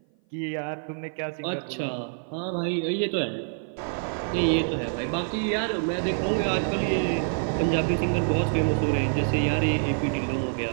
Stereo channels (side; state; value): left; silent; 56 dB below the other